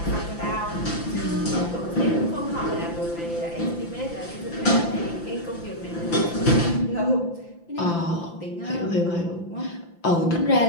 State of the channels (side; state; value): right; late; 5.9 ms